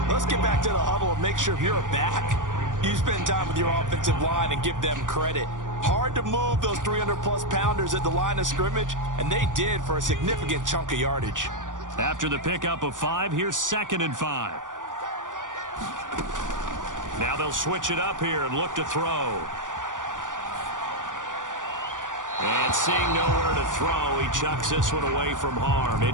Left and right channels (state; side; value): late; left; 0.88 ms